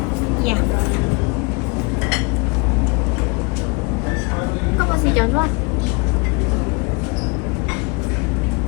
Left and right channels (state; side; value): quieter; right; 29.6 dB